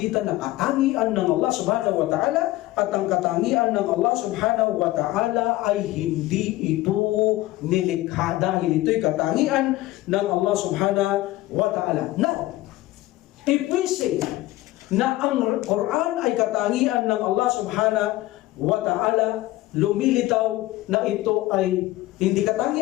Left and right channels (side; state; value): right; quieter; 17.5 dB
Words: ng katangian ng Allah subhanahu wa ta'ala, at ang katangian ng Allah subhanahu wa ta'ala ay hindi ito nilikha, dahil ito'y katangian ng Allah subhanahu wa ta'ala. Now, if we say na ang Quran ay katangian ng Allah subhanahu wa ta'ala, lumilitaw na ito ay hindi